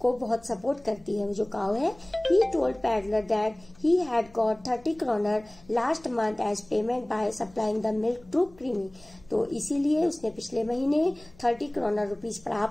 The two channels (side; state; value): left; noise; hum, 26 dB below the sound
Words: बहुत सपोर्ट करती है वो जो काउ है। He told peddler that he had got 30 kroner last month as payment by supplying the milk to creamery. तो इसीलिए उसने पिछले महीने 30 kroner रुपीज